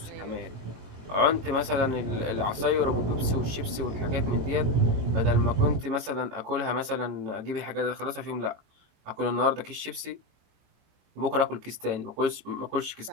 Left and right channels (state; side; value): late; left; 21 ms